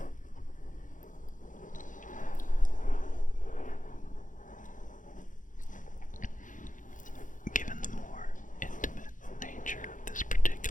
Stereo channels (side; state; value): right; late; 0.38 ms